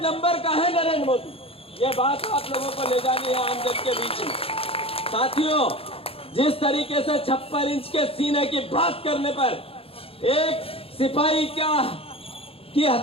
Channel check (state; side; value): late; right; 0.27 ms